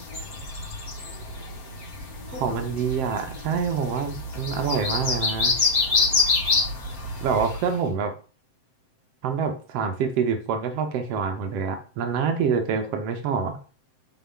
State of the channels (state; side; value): late; left; 7.7 ms